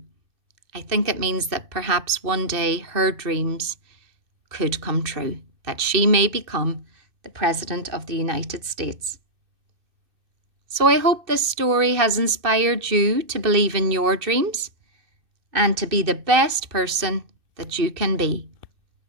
I think it means that perhaps one day her dreams could come true, that she may become the President of the United States. So I hope this story has inspired you to believe in your dreams and to be the best person that you can be.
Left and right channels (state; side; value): late; left; 2.6 ms